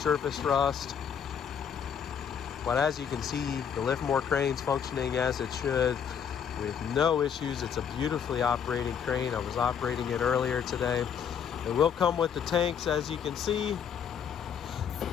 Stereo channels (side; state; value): right; quieter; 7.7 dB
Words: rust. But as you can see, the Liftmore crane's functioning as it should with no issues. It's a beautifully operating crane. I was operating it earlier today. It will come with the tanks, as you can see.